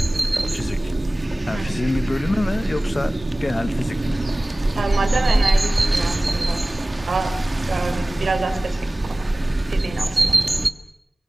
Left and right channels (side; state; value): both; normal; correlation 0.98